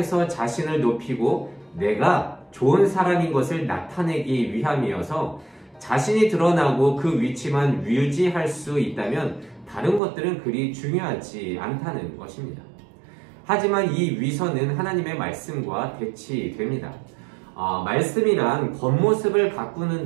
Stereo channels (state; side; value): drops out; left; at 10.0 s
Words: 자신을 높이고 내가 좋은 사람인 것을 나타내기 위함이어서 자신이 드러나고 그 위치만 유지할 수 있다면 다른 것들은 그리 중요하지 않다는 것입니다. 하지만 이 위선은 하나님의 말씀과 대치됩니다. 말씀이란 겉모습을